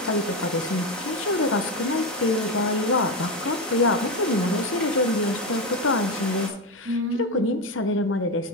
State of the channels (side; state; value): both; normal; correlation 0.13